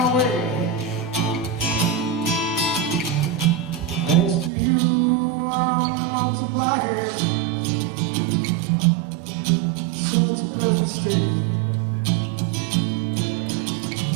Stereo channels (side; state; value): left; drops out; at 4.5 s